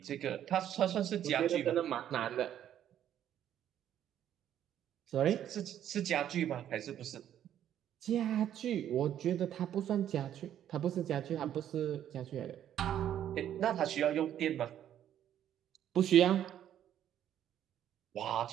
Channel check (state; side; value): quieter; left; 10.6 dB